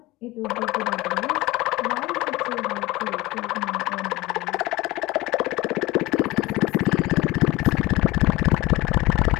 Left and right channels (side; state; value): right; quieter; 19.8 dB